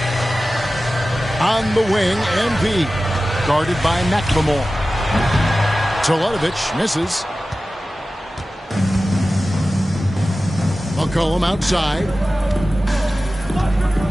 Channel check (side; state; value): both; normal; correlation 0.95